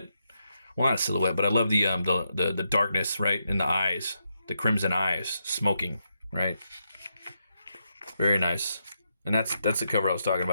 Well, not a silhouette, but I love the darkness right in the eyes, the crimson eyes, smoking, right? Very nice. And that's the cover I was talking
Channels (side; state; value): both; inverted; correlation -0.82